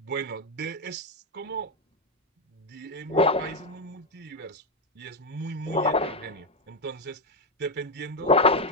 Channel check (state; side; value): normal; both; correlation 0.07